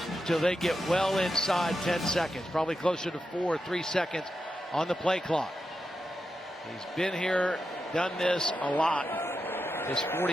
until they get well inside 10 seconds, probably closer to 4 or 3 seconds on the play clock. He's been here, done this a lot. His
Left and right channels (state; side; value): normal; both; correlation 0.88